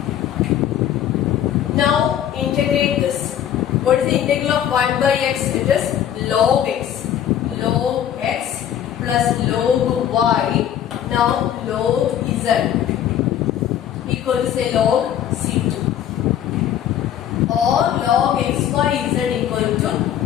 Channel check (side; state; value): right; quieter; 10.3 dB